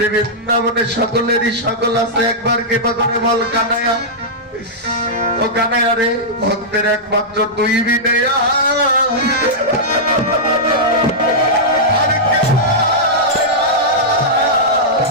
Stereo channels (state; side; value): normal; both; correlation -0.10